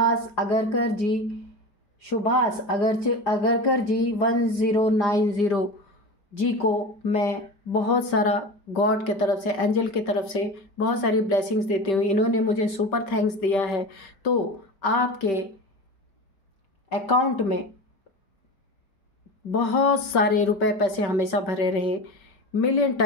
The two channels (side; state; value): right; late; 5.2 ms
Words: अगरकर जी 1090 जी को मैं बहुत सारा गॉड के तरफ से, एंजल की तरफ से बहुत सारी ब्लेसिंग्स देती हूँ। इन्होंने मुझे सुपर थैंक्स दिया है। तो आपके अकाउंट में बहुत सारे रुपए पैसे हमेशा भरे रहे, मिलियन